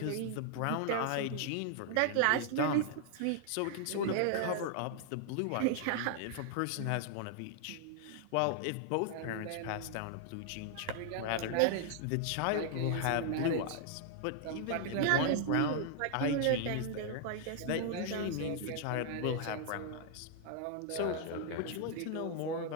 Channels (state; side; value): different; both; correlation 0.00